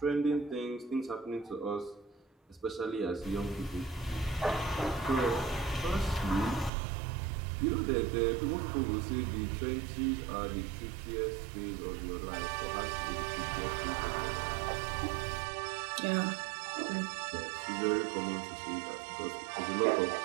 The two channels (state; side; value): drops out; left; at 6.7 s